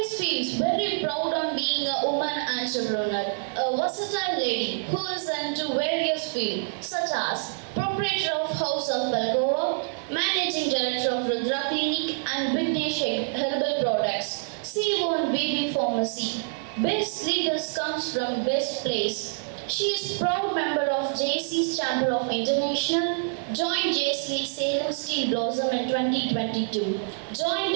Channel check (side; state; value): left; silent; 60 dB below the other